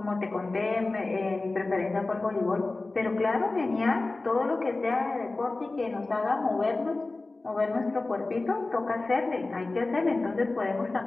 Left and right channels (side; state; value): right; quieter; 3.3 dB